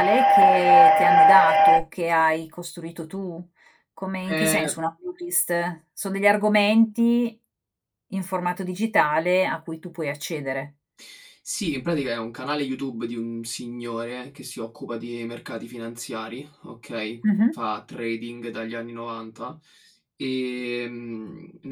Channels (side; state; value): both; identical; correlation 1.00